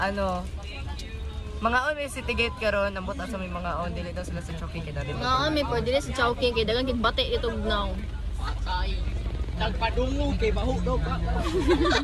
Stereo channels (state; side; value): identical; both; correlation 1.00